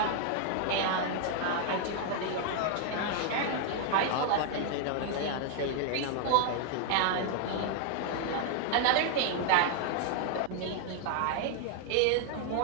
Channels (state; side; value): different; both; correlation 0.00